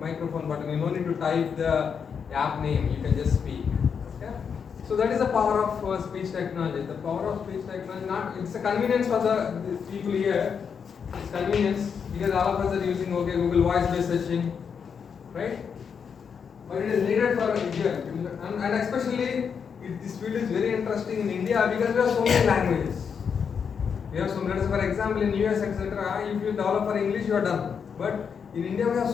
button. You don't need to type the app name. You can just speak. So that is the power of speech technology. The power of speech technology, it's a convenience for the people here. It's convenience because all of us are using Google voice-based searching, right? But it is needed for here, and especially this field is very interesting in India because we have so many languages. We have for example, in US, etc. If you develop for English, you are done. But in India, we have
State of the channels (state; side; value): quieter; right; 6.7 dB